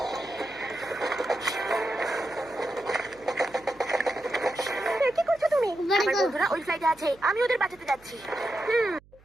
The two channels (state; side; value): noise; right; hum, 27 dB below the sound